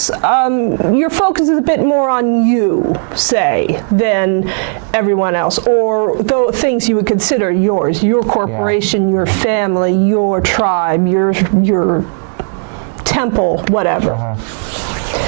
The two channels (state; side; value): silent; left; 60 dB below the other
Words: your focus is a bit more on you, say, than everyone else, or the things you would consider yours, your corporation, your family, your tribe, your temple, whatever.